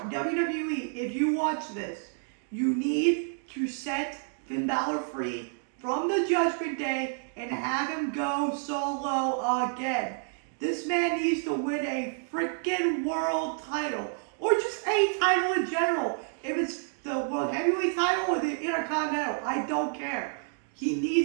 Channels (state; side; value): silent; left; 58 dB below the other